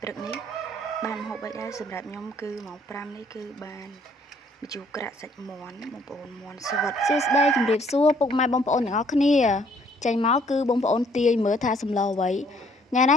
ព្រឹកនេះបានហូបអីដែរសម្រាប់ខ្ញុំគឺម៉ោង5នេះគឺបានម្ជូរក្រាក់សាច់មាន់បងប្អូនមាន់ស្វិតសួស្ដីជំរាបសួរពុកម៉ែបងប្អូនទាំងអស់គ្នាចេញមកគឺបងប្អូនទាយមើលថាសម្លអ្វីថ្ងៃនេ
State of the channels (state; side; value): normal; both; correlation 0.63